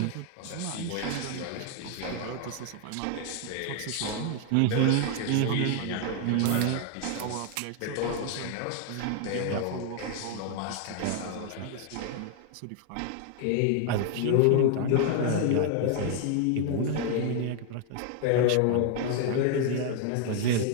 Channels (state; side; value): different; both; correlation 0.00